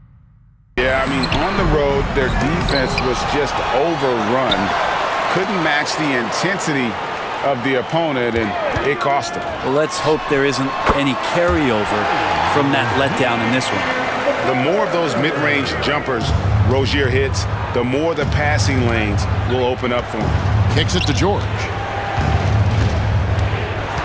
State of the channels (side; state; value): both; identical; correlation 1.00